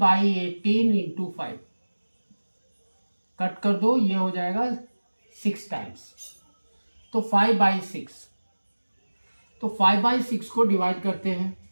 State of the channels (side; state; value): both; inverted; correlation -1.00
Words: 18 into 5, cut कर दो, ये हो जाएगा 6 टाइम्स, तो 5/6, तो 5/6 को डिवाइड करते हैं,